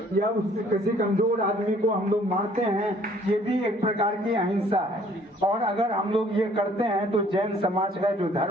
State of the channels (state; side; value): normal; both; correlation 0.58